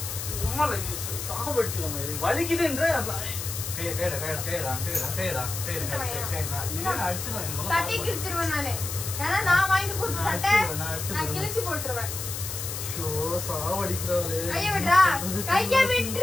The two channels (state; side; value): noise; left; hiss, 6 dB below the sound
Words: சாப்பிடுச்சு வலிக்குதுன்ற சட்டை கிழிச்சிருவேன் நானு. ஏன்னா நான் வாங்கி கொடுத்த சட்டை நான் கிழிச்சு போட்டுருவேன். கைய விட்றா கைய